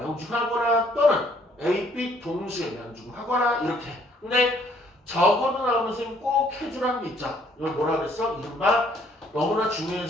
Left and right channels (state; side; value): normal; both; correlation 0.64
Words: 또는 A, B 동시에 명중하거나 이렇게. 근데 적어도 나오는 선생님 꼭 해주라는 게 있죠. 이걸 뭐라 그랬어? 이른바 너무나